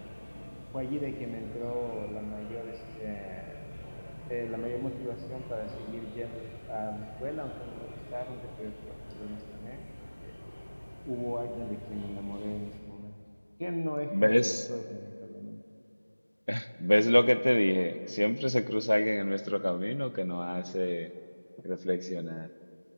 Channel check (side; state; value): both; inverted; correlation -1.00